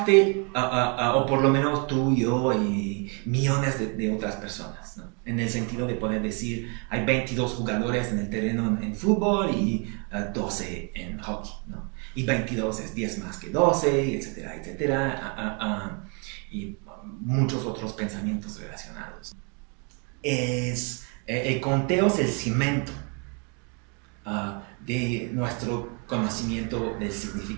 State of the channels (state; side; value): quieter; left; 36.0 dB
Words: o por lo menos tú, yo y millones de otras personas, ¿no? En el sentido de poder decir, hay 22 jugadores en el terreno en fútbol y 12 en hockey, ¿no? Y 22 es 10 más que 12, etcétera, etcétera, y muchos otros pensamientos relacionados. El conteo es el cimento de nuestro conocimiento del